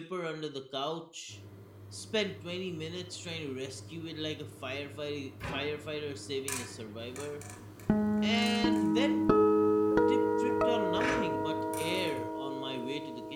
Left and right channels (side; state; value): both; identical; correlation 1.00